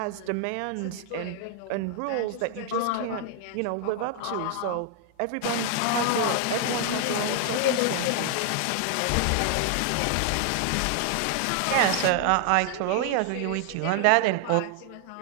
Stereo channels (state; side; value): different; both; correlation 0.00